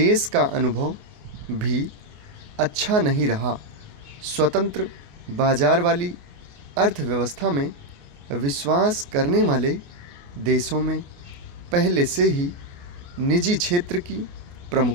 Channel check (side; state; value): left; late; 28 ms